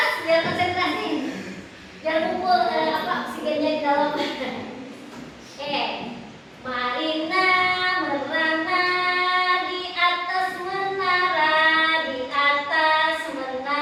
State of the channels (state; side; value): identical; both; correlation 1.00